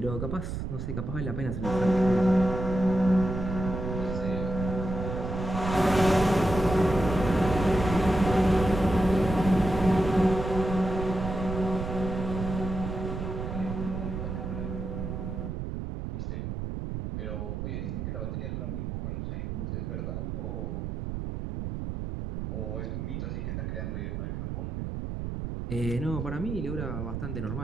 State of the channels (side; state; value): right; noise; rumble, 4 dB below the sound